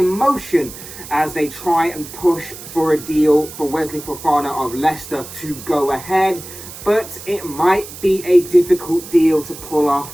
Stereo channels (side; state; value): right; noise; hiss, 14 dB below the sound